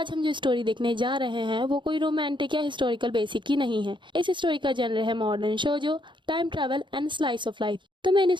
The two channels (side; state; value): left; late; 0.23 ms